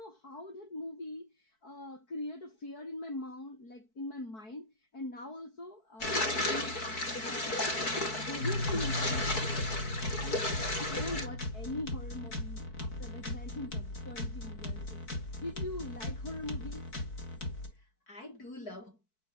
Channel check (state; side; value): late; right; 4.6 ms